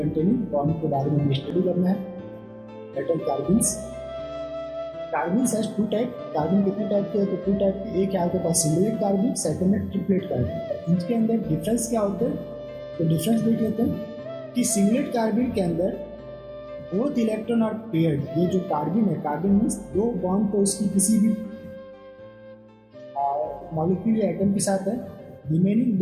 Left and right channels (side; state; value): both; identical; correlation 1.00